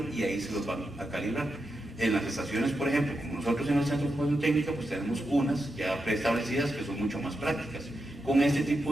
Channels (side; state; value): both; normal; correlation 0.87